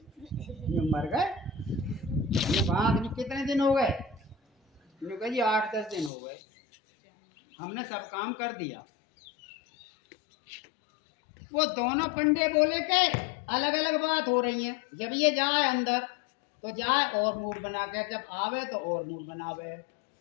यूँ मर गए वहाँ कितने दिन हो गए? यूँ कह जी 8-10 दिन हो गए, हमने सब काम कर दिया। वो दोनों पंडे बोले के अलग अलग बात हो रही है, जब ये जाए अंदर तो जाए और मूड बना के, जब आवे तो और मूड बनावे।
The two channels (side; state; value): right; drops out; at 6.1 s